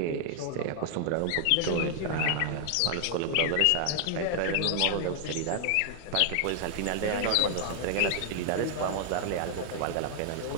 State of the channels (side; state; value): both; different; correlation 0.00